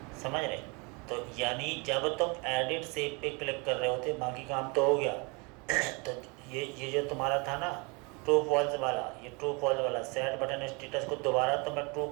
समझ रहे। तो यानी जब तुम एडिट सेव पे क्लिक कर रहे होते, बाकी काम तो हो गया तो ये जो तुम्हारा था ना ट्रू फॉल्स वाला, ये ट्रू फॉल्स वाला सेट बटन स्टेटस को दोबारा तुम्हें ट्रू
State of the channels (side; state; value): left; quieter; 30.1 dB